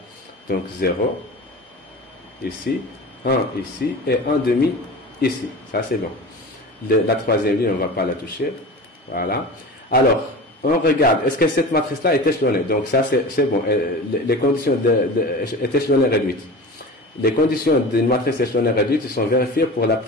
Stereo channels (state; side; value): normal; both; correlation 0.33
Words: Donc 0 ici, 1 ici et 1,5 ici. Ça, c'est bon. La troisième ligne, on ne va pas la toucher. Voilà. Alors, on regarde. Est-ce que cette matrice-là est échelonnée? Donc, ça, c'est bon. Les conditions est échelonnée réduite. Les conditions d'une matrice échelonnée réduite sont vérifiées pour la